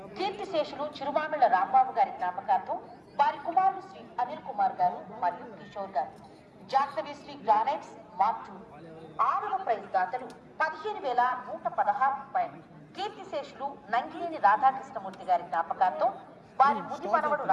కీర్తిశేషులు చిరుమామిళ్ల రాంబాబు గారి జ్ఞాపకార్థం వారి కుమారులు శ్రీ అనిల్ కుమార్ గారు మరియు కిషోర్ గారు. జాహ్నవి శ్రీ గ్రానైట్స్ మార్చూరు. 6వ ప్రైజ్ దాతలు 15,116 రూపాయలు. కీర్తిశేషులు నంగినేని రాధాకృష్ణమూర్తి గారి జ్ఞాపకార్థం వారి ముది మనవడు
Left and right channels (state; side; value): identical; both; correlation 1.00